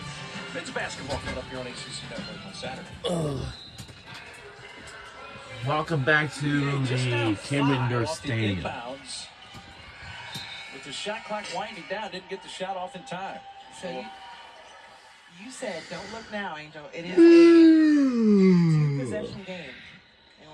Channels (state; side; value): identical; both; correlation 1.00